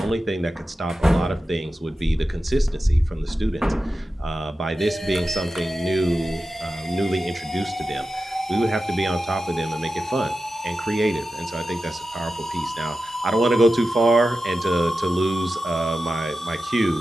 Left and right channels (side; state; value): both; normal; correlation 0.92